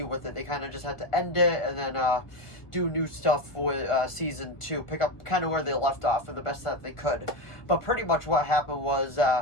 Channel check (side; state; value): right; late; 1.4 ms